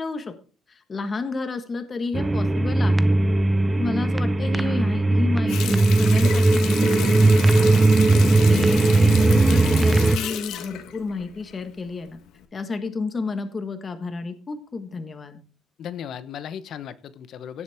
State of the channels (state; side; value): normal; both; correlation 0.93